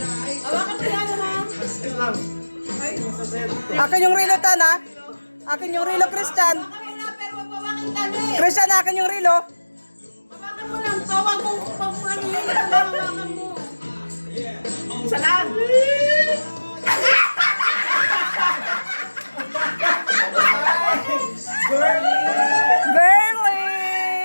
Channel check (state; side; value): inverted; both; correlation -1.00